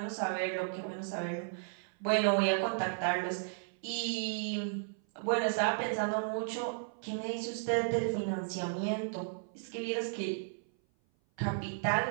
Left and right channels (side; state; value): left; silent; 55 dB below the other